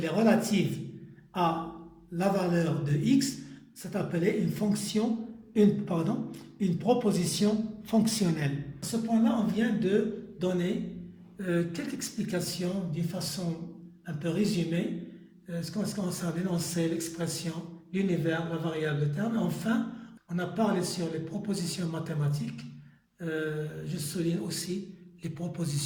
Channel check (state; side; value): identical; both; correlation 1.00